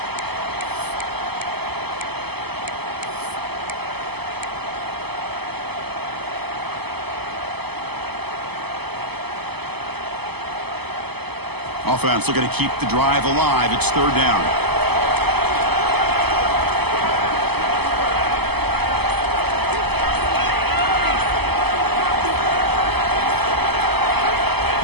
Offense looking to keep the drive alive. It's third down.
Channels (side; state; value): left; late; 0.98 ms